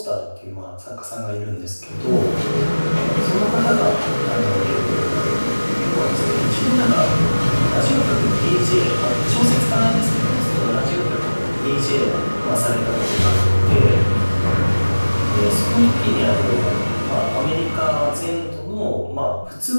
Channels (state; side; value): inverted; both; correlation -1.00